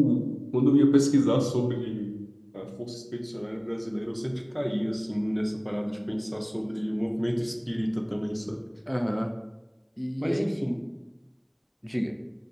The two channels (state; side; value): identical; both; correlation 1.00